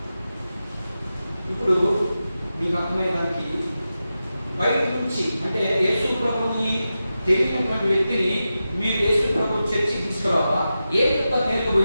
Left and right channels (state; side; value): inverted; both; correlation -0.92